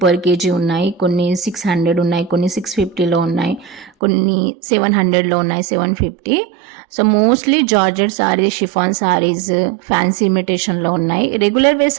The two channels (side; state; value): left; drops out; at 3.9 s